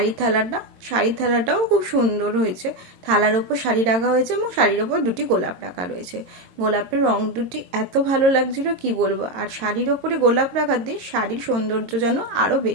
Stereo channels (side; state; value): left; late; 22 ms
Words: থালাটাও খুব সুন্দর হয়েছে। থালার ওপর শাড়ি রাখা হয়েছে এবং শাড়ির ওপর দুটি গোলাপ রাখা রয়েছে। গোলাপের রং দুটি এত ভালো লাগছিল কি বলবো। আর শাড়ির ওপরে গোলাপ রাখাতে শাড়ির সৌন্দর্য যেন আরও